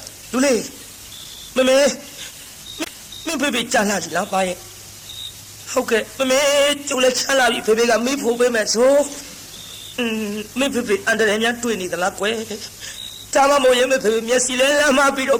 လူလေးမမေမင်းဖေဖေကြာလာပြီလားပါရဲ့ဟုတ်ကဲ့မမေကျုပ်လည်းချမ်းလာပြီဖေဖေကမိဖို့ပေးမယ်ဆိုမင်းဖေဖေအန်တရယ်များတွေ့နေသလားကွယ် ဒါမှမဟုတ်ရင်မဖေမျက်စိလဲလမ်းမပြီးတော့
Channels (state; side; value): identical; both; correlation 1.00